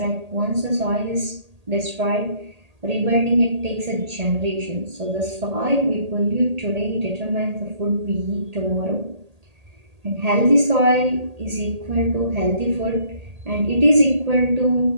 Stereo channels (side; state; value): left; late; 1.8 ms